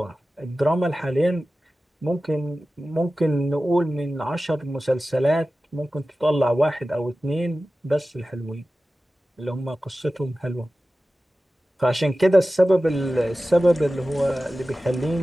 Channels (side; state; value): both; normal; correlation 0.95